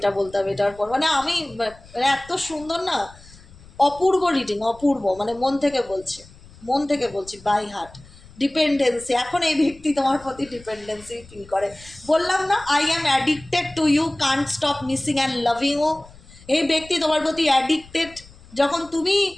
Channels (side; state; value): left; noise; rumble, 22 dB below the sound